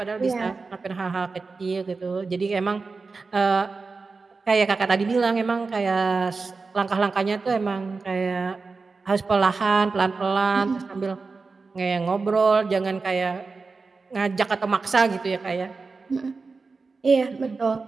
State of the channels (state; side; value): quieter; left; 4.2 dB